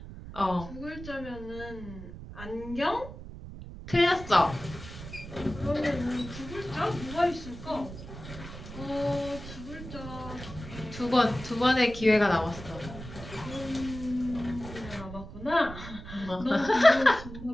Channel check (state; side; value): noise; right; rumble, 12 dB below the sound